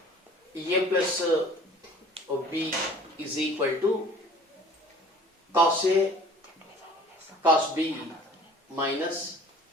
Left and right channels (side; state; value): both; normal; correlation 0.48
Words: a plus b is equal to cos a cos b minus